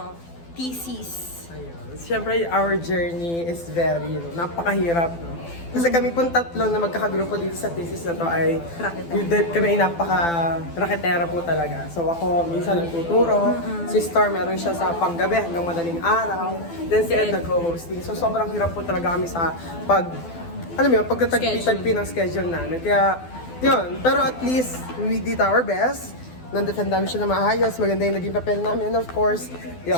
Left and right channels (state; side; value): late; right; 12 ms